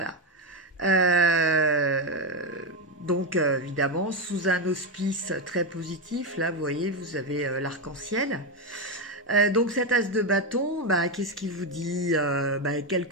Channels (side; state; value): both; normal; correlation 0.10